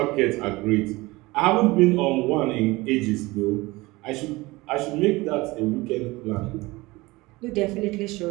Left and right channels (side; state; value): left; quieter; 21.5 dB